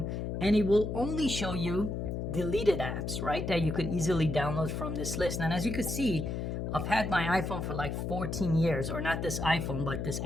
and it will only show you deleted apps, right? That you could easily download from this list. And as you can see, I've had my iPhone for like 14 years, or not this iPhone, but this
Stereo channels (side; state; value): left; noise; hum, 3 dB below the sound